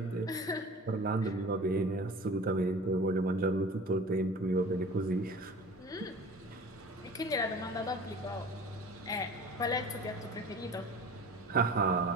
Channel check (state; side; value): normal; both; correlation 0.40